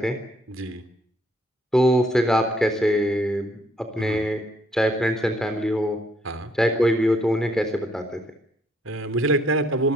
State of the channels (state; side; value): normal; both; correlation 0.68